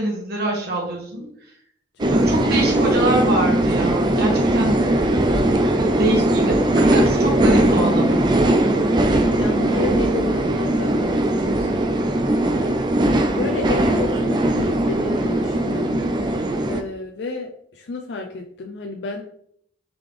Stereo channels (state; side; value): normal; both; correlation 0.66